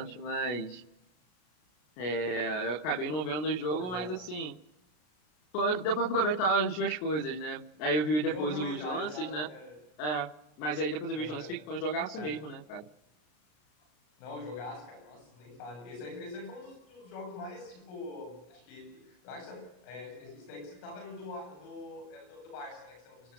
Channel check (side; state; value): right; late; 33 ms